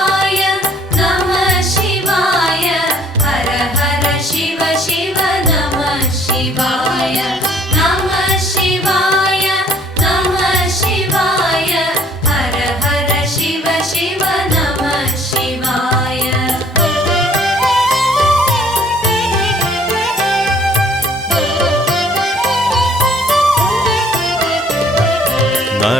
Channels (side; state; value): both; normal; correlation 0.59